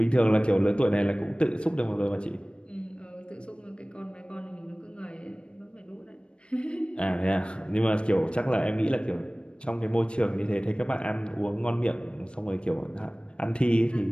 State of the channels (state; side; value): late; right; 0.056 ms